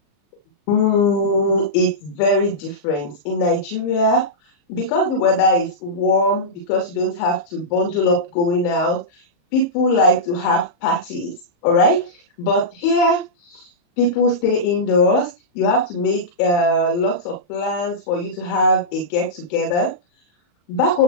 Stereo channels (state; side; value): late; right; 34 ms